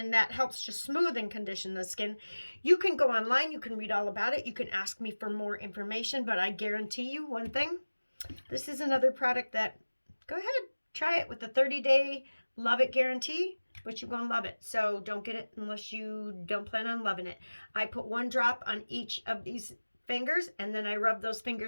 that helps to smooth and condition the skin. You can go online, you can read all about it, you can ask me for more information, but I guarantee you one thing, this is another product that, go ahead, try it with the 30-day love it guarantee, but you're going to love it. So don't get it unless you don't plan on loving it. I put 1 drop on each of these fingers, and then I rub those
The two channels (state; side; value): inverted; both; correlation -1.00